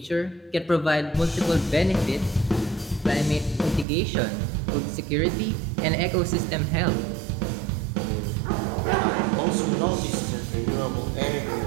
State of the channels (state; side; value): drops out; left; at 3.9 s